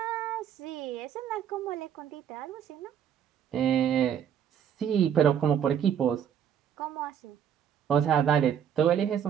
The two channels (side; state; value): left; quieter; 8.9 dB